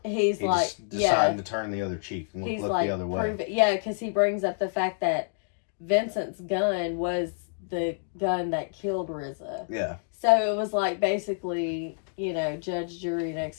he's He like, just decided to turn the other cheek and he's look like, the other way. prove it, yeah, because he brings up the fact that Vincent's gun was the gun that killed RZA. Yeah. So it was like basically, you know, judge, jury, and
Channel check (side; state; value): right; silent; digital silence